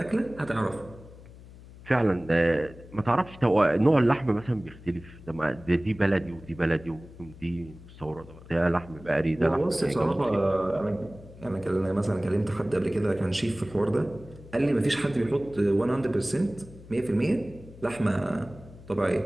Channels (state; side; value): noise; left; hum, 19 dB below the sound